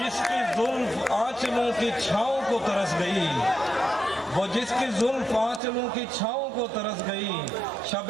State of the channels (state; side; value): drops out; left; at 5.6 s